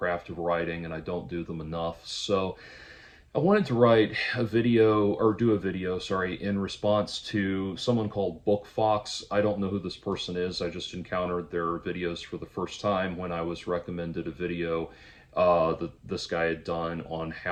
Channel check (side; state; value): both; identical; correlation 1.00